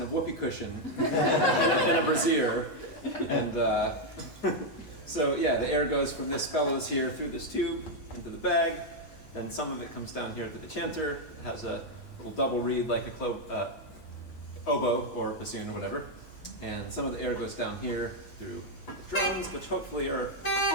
a whoopee cushion and a brassiere, and so the air goes from this bellows here through this tube into the bag, then some of it comes down here to the chanter. It has a little double reed like a oboe or bassoon or whatever, and some of the air goes down here through the drums, which hopefully are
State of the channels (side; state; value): right; late; 8.2 ms